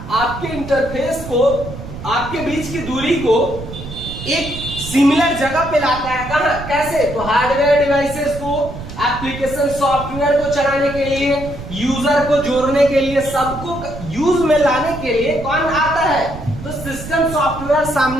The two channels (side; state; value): right; noise; rumble, 11 dB below the sound